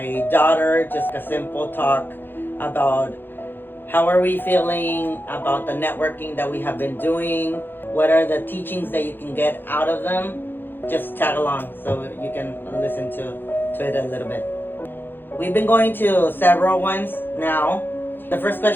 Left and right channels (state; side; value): late; right; 0.098 ms